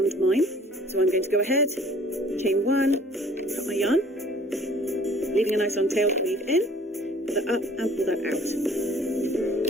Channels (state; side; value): normal; both; correlation 0.53